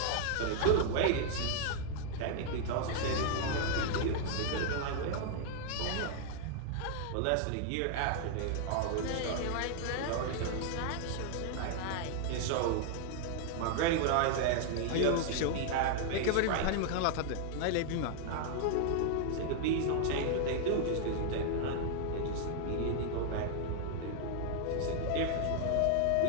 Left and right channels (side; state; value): both; different; correlation 0.00